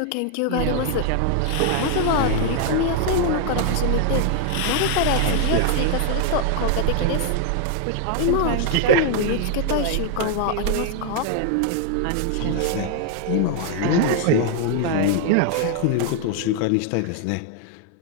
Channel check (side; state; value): both; different; correlation 0.00